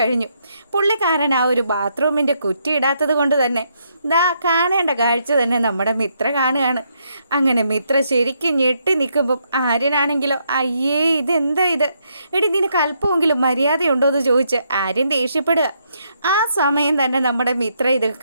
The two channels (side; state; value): both; inverted; correlation -0.76